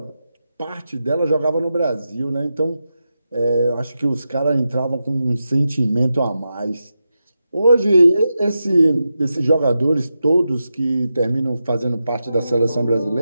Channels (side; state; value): both; inverted; correlation -0.89